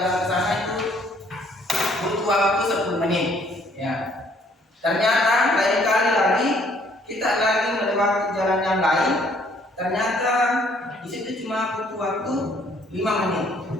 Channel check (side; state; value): both; normal; correlation 0.63